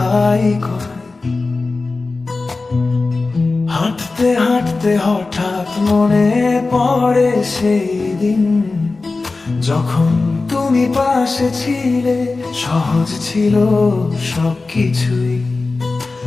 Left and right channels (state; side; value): quieter; right; 3.7 dB